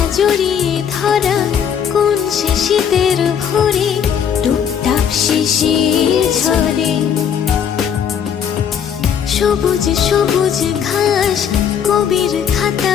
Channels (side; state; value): right; quieter; 8.0 dB